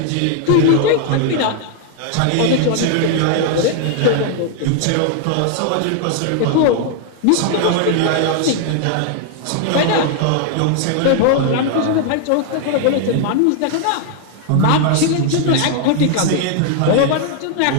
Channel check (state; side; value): different; both; correlation 0.00